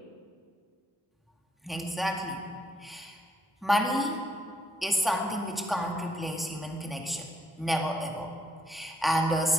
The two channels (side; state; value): both; normal; correlation 0.74